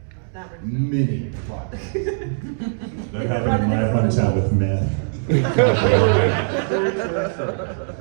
Many plot. That happened in my hometown with meth.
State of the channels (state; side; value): silent; left; digital silence